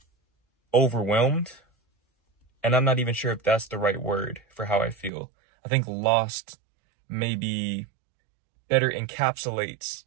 overwhelmed, and I'm not even sure if that's the right word for how I feel. I think lost maybe better encapsulates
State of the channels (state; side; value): drops out; left; at 5.1 s